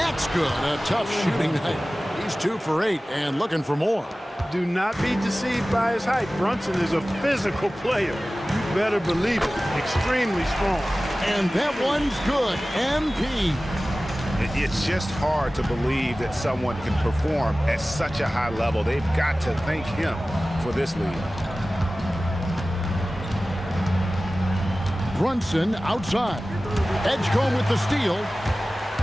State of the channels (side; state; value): both; normal; correlation 0.97